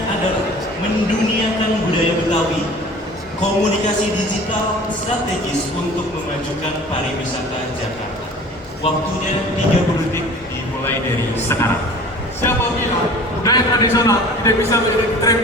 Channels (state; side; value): normal; both; correlation 0.44